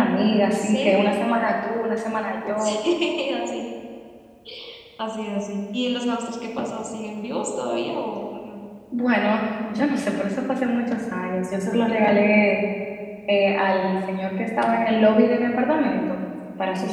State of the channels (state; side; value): identical; both; correlation 1.00